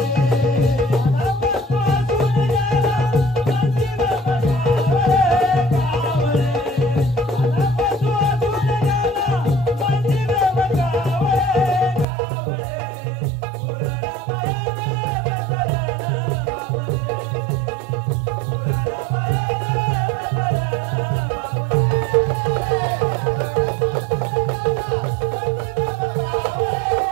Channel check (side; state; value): left; drops out; at 12.1 s